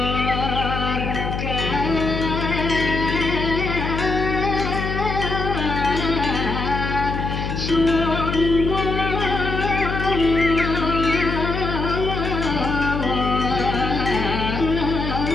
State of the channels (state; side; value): noise; left; hum, 3 dB below the sound